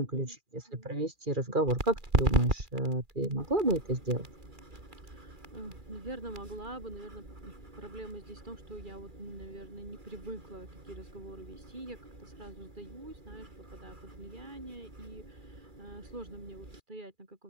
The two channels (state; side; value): late; left; 2.4 ms